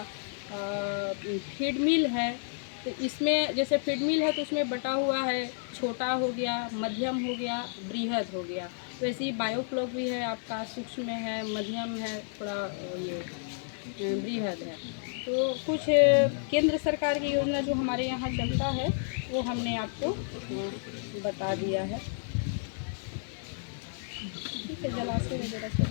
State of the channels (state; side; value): silent; right; 57 dB below the other